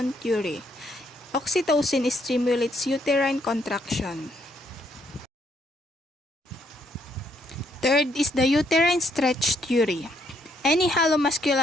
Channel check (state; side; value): normal; both; correlation 0.72